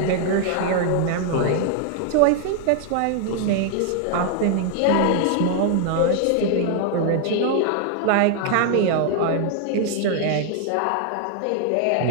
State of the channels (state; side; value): different; both; correlation 0.00